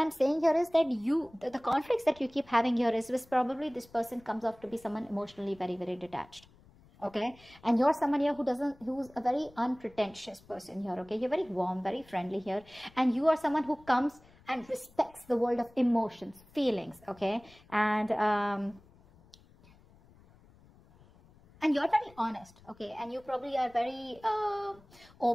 saying here is that the conflicts that you keep having here is probably this person comes off to be someone emotionally very, very detached, okay? And you're someone here who's a very unpretentious person here, okay? You're very warm, very friendly here. And you are someone who comes and respects the world of emotions, feelings, okay? And you're very honest, okay? And you probably are very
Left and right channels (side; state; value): left; noise; rumble, 26 dB below the sound